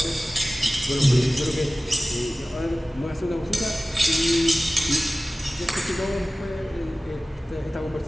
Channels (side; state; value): both; normal; correlation 0.97